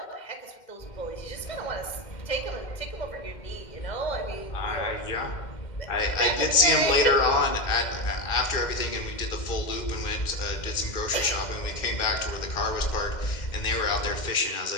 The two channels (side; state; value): right; late; 2.1 ms